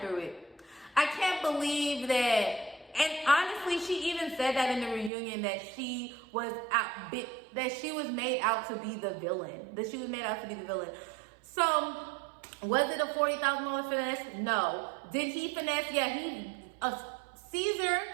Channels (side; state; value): left; drops out; at 5.1 s